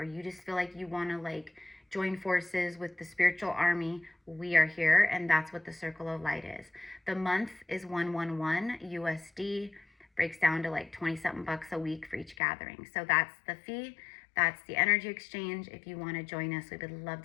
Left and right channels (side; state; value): right; drops out; at 12.4 s